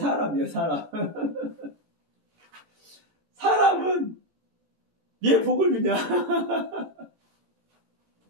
사람. 사람은 왜 복을 주냐?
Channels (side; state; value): left; late; 14 ms